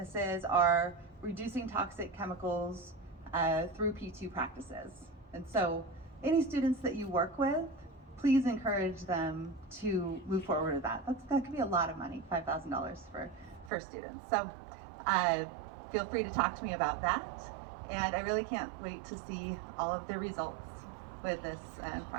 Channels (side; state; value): left; drops out; at 13.7 s